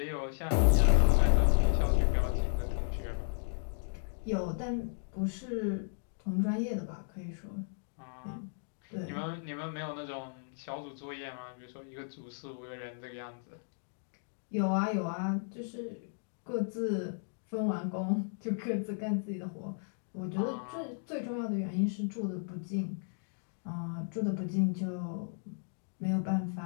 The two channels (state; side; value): silent; right; digital silence